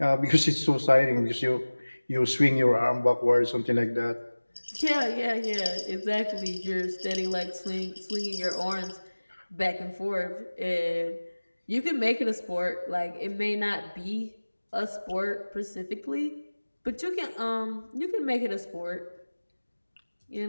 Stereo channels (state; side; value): inverted; both; correlation -1.00